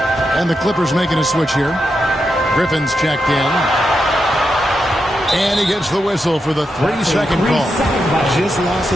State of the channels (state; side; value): normal; both; correlation 0.86